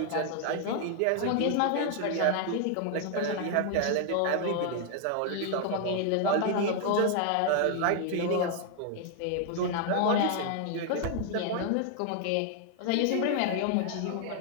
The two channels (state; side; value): different; both; correlation 0.00